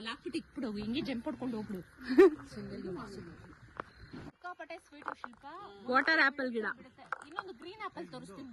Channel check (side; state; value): both; identical; correlation 1.00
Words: ಹಾಕ್ಬಿಟ್ಟು ಇಟ್ಬಿಡು, ಹಿಂಗೆ ಜಂಪ್ ಹೊಡ್ಕೊಂಡು ಹೋಗ್ಬಿಡು. ಸಿಕ್ಕಾಪಟ್ಟೆ ಸ್ವೀಟ್ ಶಿಲ್ಪ. ವಾಟರ್ ಆಪಲ್ ಗಿಡ. ಇನ್ನೊಂದು ಗ್ರೀನ್ ಆಪಲ್ ತೋರಿಸ್ತೀನಿ.